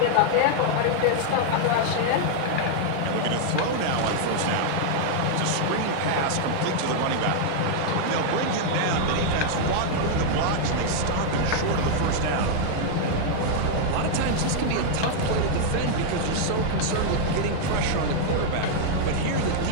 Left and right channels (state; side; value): different; both; correlation -0.01